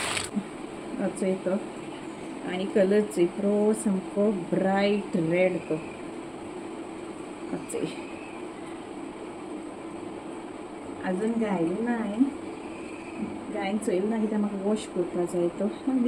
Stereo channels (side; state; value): both; identical; correlation 1.00